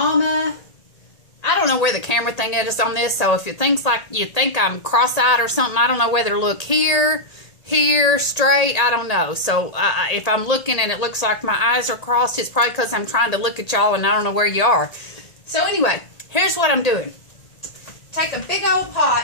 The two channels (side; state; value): right; late; 1.8 ms